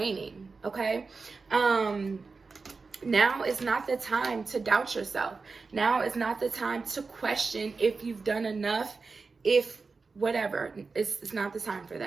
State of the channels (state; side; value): quieter; left; 4.4 dB